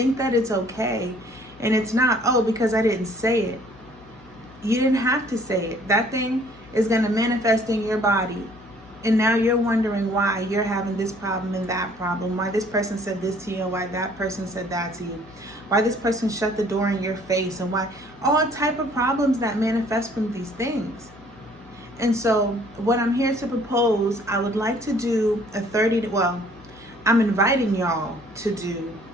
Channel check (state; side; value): noise; left; hum, 25 dB below the sound